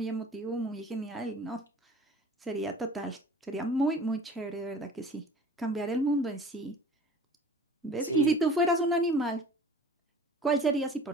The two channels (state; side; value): normal; both; correlation 0.45